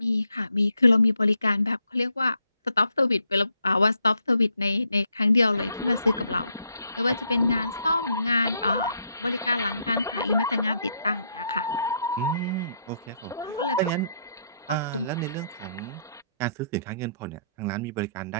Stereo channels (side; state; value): both; inverted; correlation -0.75